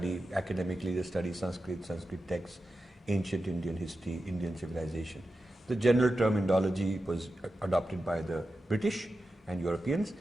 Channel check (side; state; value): both; normal; correlation 0.91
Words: academically, they study Sanskrit, Sanskrit texts, ancient Indian history, Indian civilization. The general term Indology was adopted by the British and Europeans,